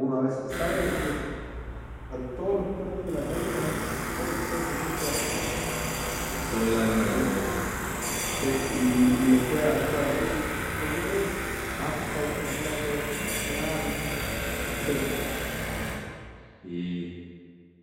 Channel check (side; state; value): both; identical; correlation 1.00